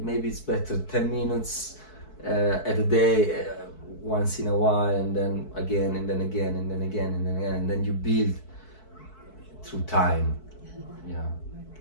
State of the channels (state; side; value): late; right; 4.6 ms